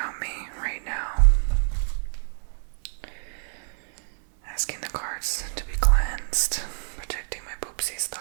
me right now. Asking the cards to be cleansed, protecting my poopsies,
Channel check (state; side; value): silent; left; digital silence